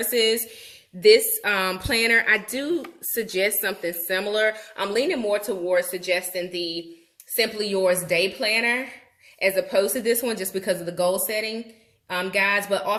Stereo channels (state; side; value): identical; both; correlation 1.00